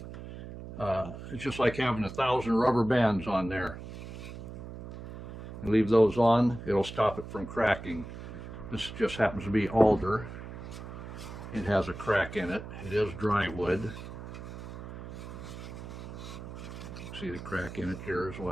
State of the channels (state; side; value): noise; right; hum, 11 dB below the sound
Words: it's just like having 1,000 rubber bands on there. You leave those on, it'll stop it from cracking. This just happens to be alder. It has a crack in it. It is dry wood. See the crack in it here as